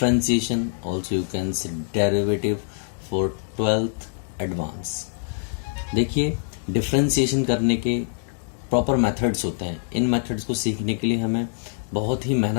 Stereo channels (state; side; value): silent; right; digital silence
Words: also you can say derivative for 12th advance. देखिए differentiation करने के proper methods होते हैं. इन methods को सीखने के लिए हमें बहुत ही